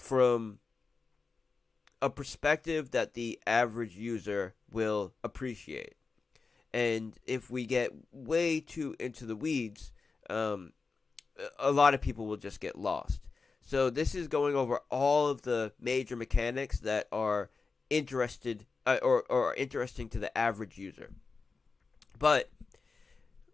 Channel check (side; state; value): right; quieter; 4.4 dB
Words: a perspective that the average user will appreciate. And if we get way too into the weeds, a lot of people will just get lost. So this is going over all of the major mechanics that are interested or interesting to the average user. But